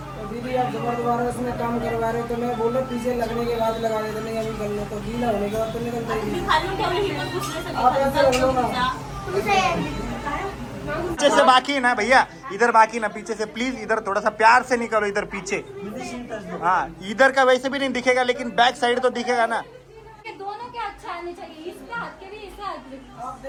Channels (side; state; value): both; identical; correlation 1.00